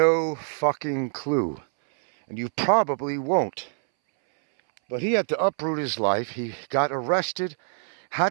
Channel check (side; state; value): left; silent; 62 dB below the other